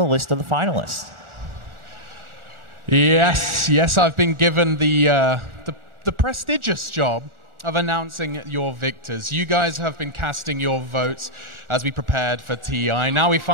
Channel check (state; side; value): late; left; 1.4 ms